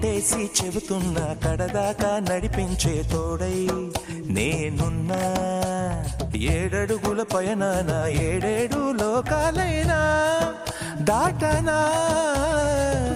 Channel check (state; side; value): identical; both; correlation 1.00